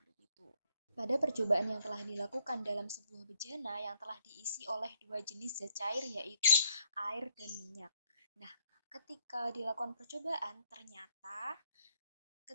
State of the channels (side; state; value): both; inverted; correlation -0.67